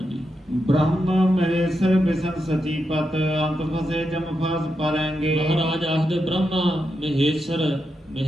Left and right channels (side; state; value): both; normal; correlation 0.86